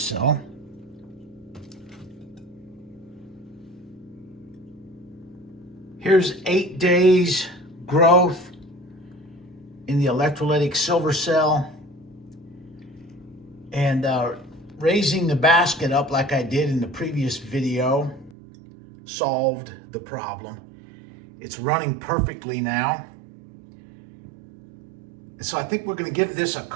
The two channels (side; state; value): left; drops out; at 18.4 s